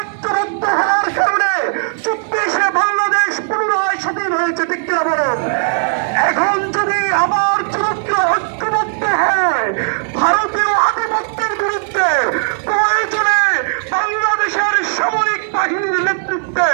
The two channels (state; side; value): silent; left; digital silence